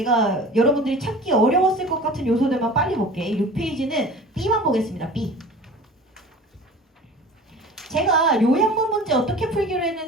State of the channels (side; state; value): both; normal; correlation 0.40